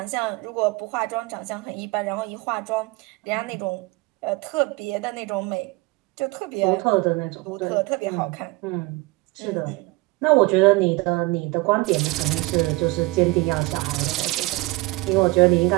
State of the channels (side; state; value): left; quieter; 22.7 dB